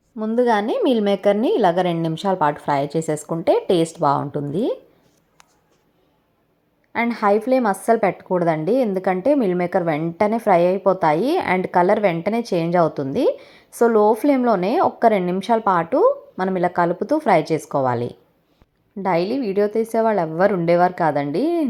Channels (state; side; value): identical; both; correlation 1.00